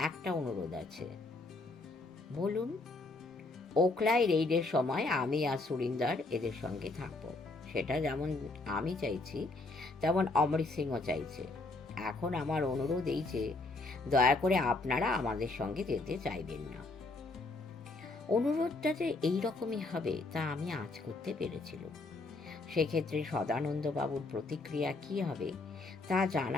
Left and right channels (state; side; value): quieter; right; 3.3 dB